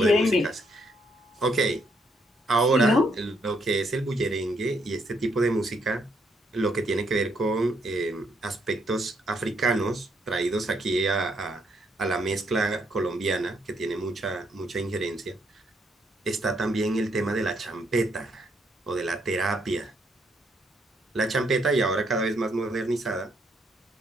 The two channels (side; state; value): both; normal; correlation 0.73